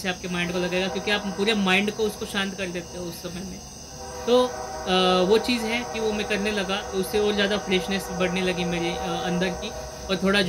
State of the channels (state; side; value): identical; both; correlation 1.00